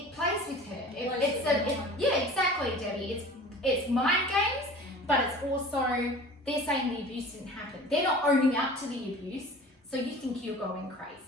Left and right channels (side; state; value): both; normal; correlation 0.41